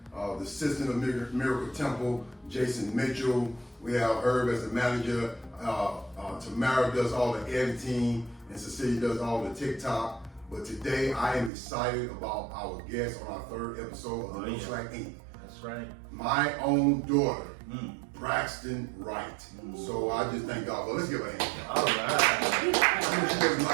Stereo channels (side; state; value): left; drops out; at 11.5 s